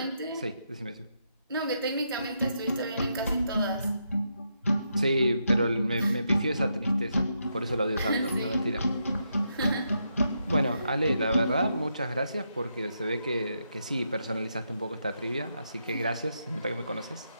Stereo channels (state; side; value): inverted; both; correlation -0.81